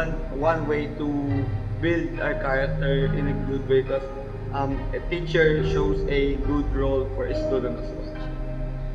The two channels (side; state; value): both; identical; correlation 1.00